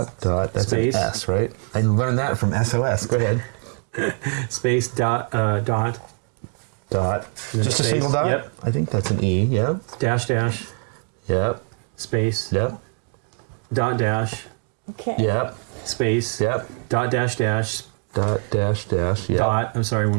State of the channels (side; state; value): left; quieter; 37.3 dB